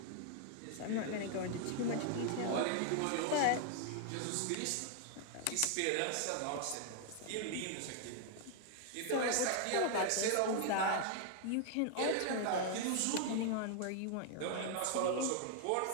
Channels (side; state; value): both; different; correlation 0.00